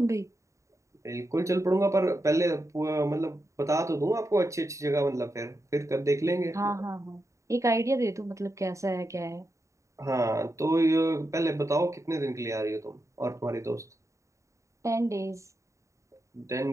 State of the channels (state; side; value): late; left; 0.15 ms